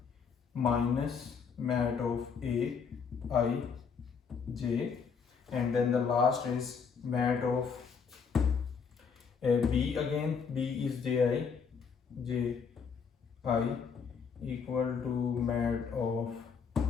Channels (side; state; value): right; quieter; 6.0 dB